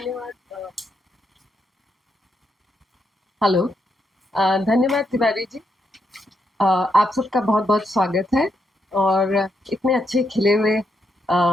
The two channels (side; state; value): both; normal; correlation 0.80